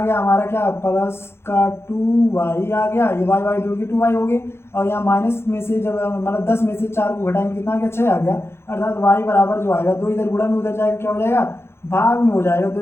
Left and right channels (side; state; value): right; late; 0.12 ms